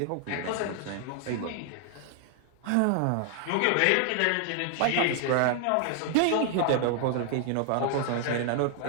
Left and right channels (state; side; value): different; both; correlation 0.00